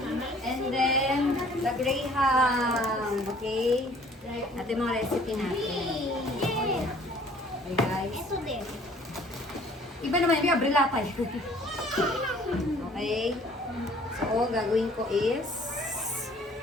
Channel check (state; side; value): normal; both; correlation 0.55